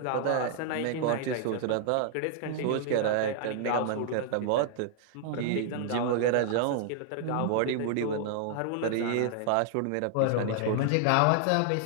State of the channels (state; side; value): different; both; correlation 0.00